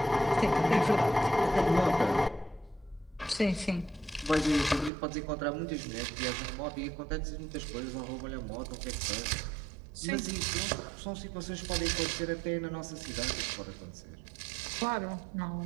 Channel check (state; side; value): drops out; left; at 4.9 s